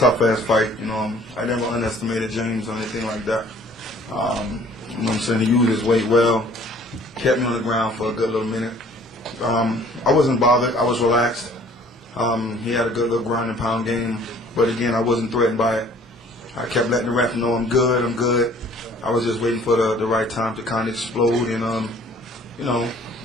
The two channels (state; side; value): normal; both; correlation 0.54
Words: fight. I never underestimated James or anything like that. You know what I'm saying? He used his weight well, kept me on the ground for a good little minute. I wasn't bothered. I was relaxed. He had a good little ground and pound game, but again, I wasn't threatened by it. I kept letting the ref know I'm good, I'm good. I was just waiting for the right time to kind of explode, and